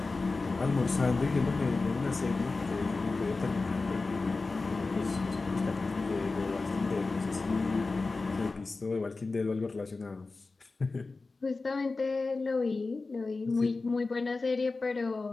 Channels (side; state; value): right; quieter; 3.7 dB